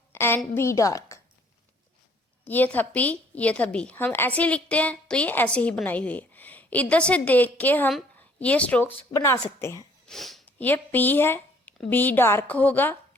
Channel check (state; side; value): normal; both; correlation 0.60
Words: एंड बी डार्क। ये था पी, ये था बी, हम ऐसे ही लिखते हैं, तो ये ऐसे ही बनाई हुई है। इधर से देख के हम ये स्ट्रोक्स बना सकते हैं। ये पी है, बी डार्क होगा,